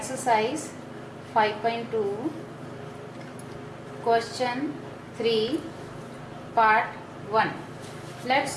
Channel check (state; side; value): identical; both; correlation 1.00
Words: 5.2 question 3 part 1. Let's